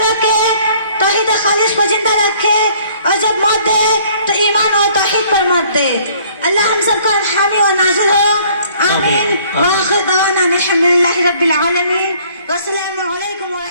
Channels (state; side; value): inverted; both; correlation -0.58